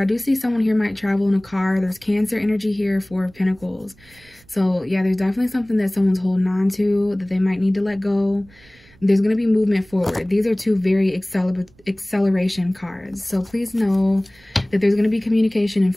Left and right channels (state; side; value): noise; right; rumble, 28 dB below the sound